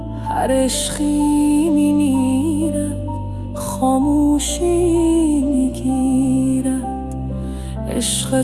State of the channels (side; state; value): both; identical; correlation 1.00